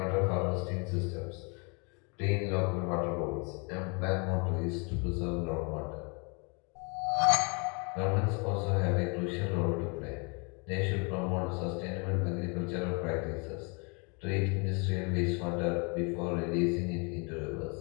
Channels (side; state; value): right; quieter; 33.4 dB